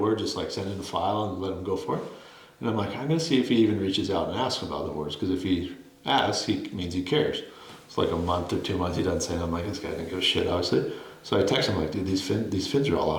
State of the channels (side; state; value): both; identical; correlation 1.00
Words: Just like send in a file and let them go for it. And I'm like, I'm going to see if he even reaches out and asks about the boards. Because if he asks, he means he cares. It's like a month or 2 months he doesn't say. And I'm like, this guy didn't give a shit, obviously. So I text him like, dude, these fins are all